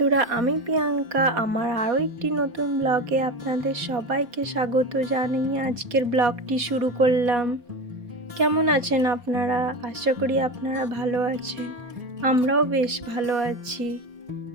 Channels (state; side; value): late; left; 4.2 ms